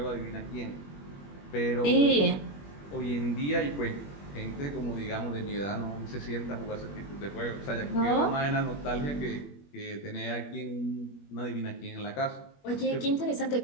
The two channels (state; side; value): late; right; 21 ms